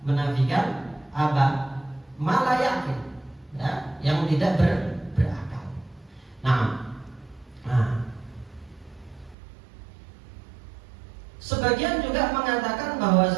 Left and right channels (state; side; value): drops out; left; at 9.3 s